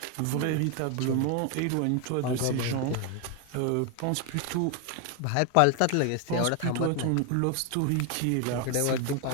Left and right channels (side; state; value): both; different; correlation 0.01